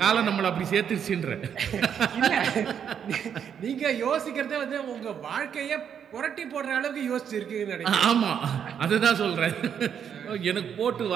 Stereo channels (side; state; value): left; quieter; 8.1 dB